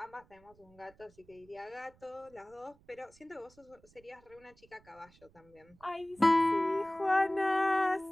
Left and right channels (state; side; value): noise; right; rumble, 28 dB below the sound